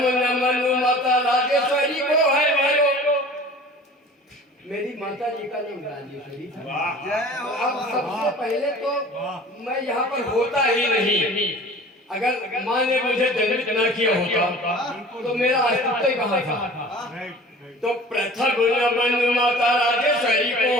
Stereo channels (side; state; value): both; normal; correlation 0.44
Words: नमन माता राजेश्वरी को है मेरो। मेरी माता जी का नाम राजेश्वरी था। अब सबसे पहले तो मैं यहाँ पर होता ही नहीं। अगर माँ ने मुझे जन्मित न किया होता तो मेरा अस्तित्व कहाँ था। तो प्रथम नमन माता राजेश्वरी